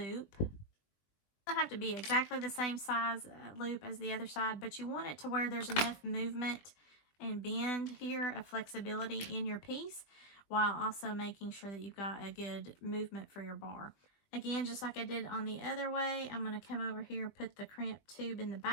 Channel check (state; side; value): late; right; 20 ms